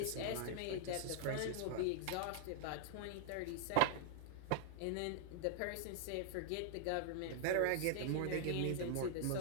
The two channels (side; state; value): both; different; correlation -0.01